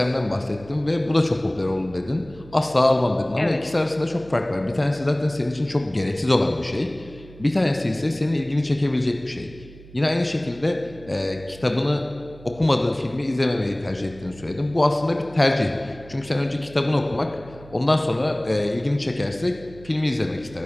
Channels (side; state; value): right; noise; hum, 20 dB below the sound